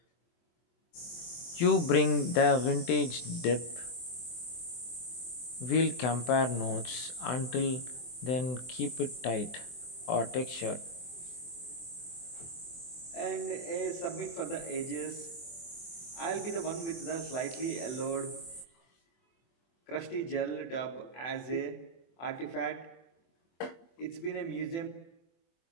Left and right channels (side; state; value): right; late; 24 ms